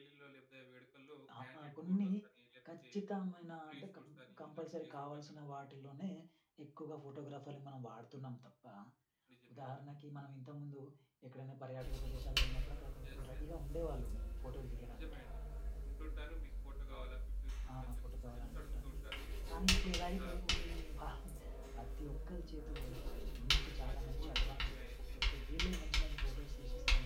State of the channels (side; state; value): both; identical; correlation 1.00